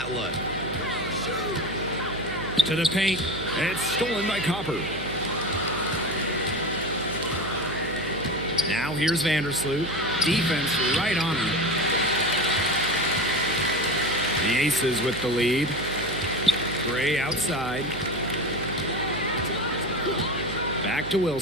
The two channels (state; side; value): noise; right; hum, 10 dB below the sound